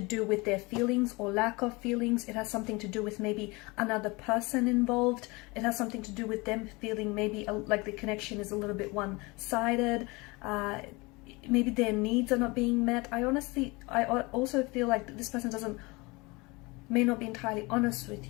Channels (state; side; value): quieter; right; 25.2 dB